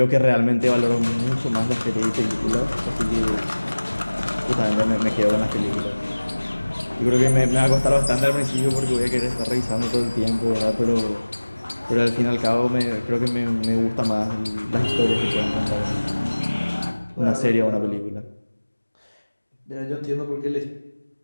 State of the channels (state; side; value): inverted; both; correlation -1.00